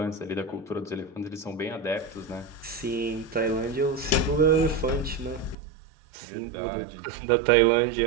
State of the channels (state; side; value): drops out; left; at 5.6 s